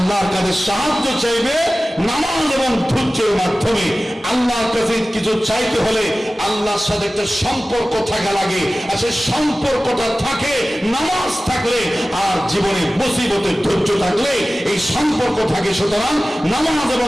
কাছে সাহায্য চাইবে নামাজ এবং ধৈর্যের মাধ্যমে। আল্লাহর কাছে কিছু চাইতে হলে আল্লাহর সাথে একটা সম্পর্ক থাকা লাগে, আর সেই সম্পর্কটা থাকে নামাজ থাকলে, আর জীবনে মুসিবতে ধৈর্য থাকলে এই সম্পর্ক থাকে। সুতরাং নামাজ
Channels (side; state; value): both; normal; correlation 0.96